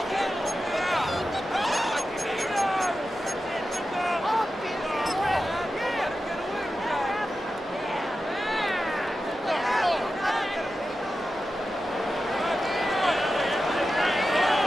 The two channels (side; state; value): both; normal; correlation 0.92